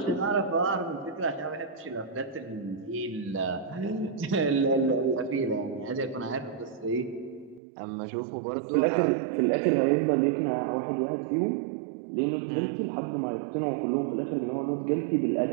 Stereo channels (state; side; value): drops out; left; at 7.6 s